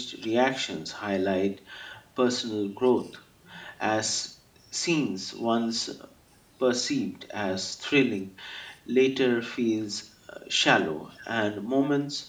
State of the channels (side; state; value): both; identical; correlation 1.00